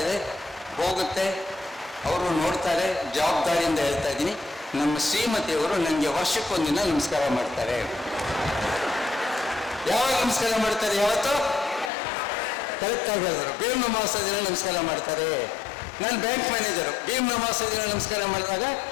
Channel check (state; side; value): drops out; right; at 11.9 s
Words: ಇದೆ, ಹೋಗುತ್ತೆ, ಅವರು ನೋಡ್ತಾರೆ. ಜವಾಬ್ದಾರಿಯಿಂದ ಹೇಳ್ತಾ ಇದ್ದೀನಿ, ನಮ್ಮ ಶ್ರೀಮತಿಯವರು ನನಗೆ ವರ್ಷಕ್ಕೊಂದಿನ ನಮಸ್ಕಾರ ಮಾಡ್ತಾರೆ. ಯಾವಾಗ ನಮಸ್ಕಾರ ಮಾಡ್ತಾರೆ? ಯಾವತ್ತೋ ಕರೆಕ್ಟಾಗಿ ಹೇಳಿದ್ರು, ಭೀಮ್ ಅಮಾವಾಸ್ಯೆ ದಿನ ನಮಸ್ಕಾರ ಮಾಡ್ತಾರೆ. ನಾನು ಬ್ಯಾಂಕ್ ಮ್ಯಾನೇಜರು. ಭೀಮ್ ಅಮಾವಾಸ್ಯೆ ದಿನ ನಮಸ್ಕಾರ ಮಾಡಿದಾಗ